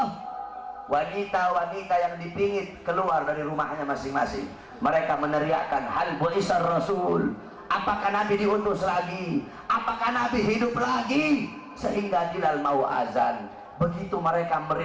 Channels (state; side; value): identical; both; correlation 1.00